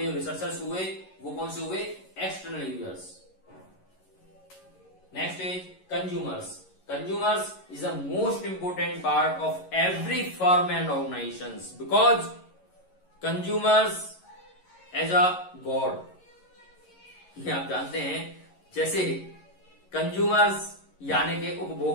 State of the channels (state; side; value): late; right; 11 ms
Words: जो रिसर्चर्स हुए वो कौन से हुए? External users. Next is consumers. Consumers is the most important part of every firm and organizations because consumers as a god, ये आप जानते हैं। जैसे कंज्यूमर्स यानी के